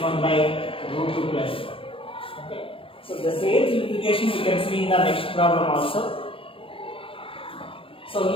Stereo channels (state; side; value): late; right; 0.26 ms